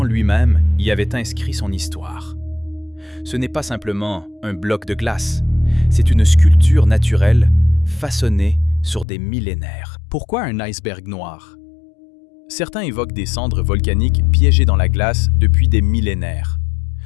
lui-même y avait inscrit son histoire. Ce n'est pas simplement un bloc de glace, c'est une sculpture naturelle façonnée sur des millénaires. Pourquoi un iceberg noir? Certains évoquent des cendres volcaniques piégées dans la glace depuis des millénaires.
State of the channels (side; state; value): right; drops out; at 9.1 s